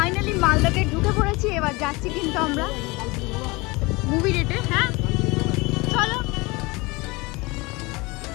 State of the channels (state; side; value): quieter; right; 24.4 dB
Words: মালদাতে ঢুকে পড়েছি, এবার যাচ্ছি কিন্তু আমরা মুভি ডেটে। হ্যাঁ চলো